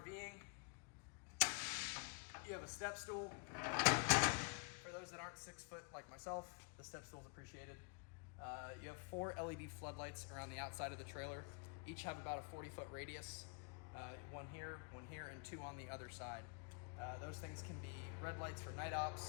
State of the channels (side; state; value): right; quieter; 36.8 dB